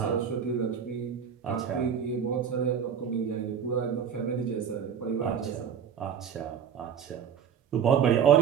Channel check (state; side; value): quieter; left; 7.8 dB